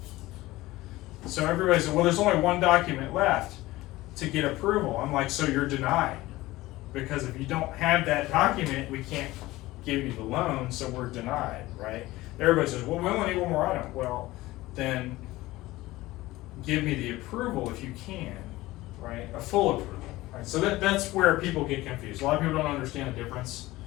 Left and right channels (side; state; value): right; quieter; 18.3 dB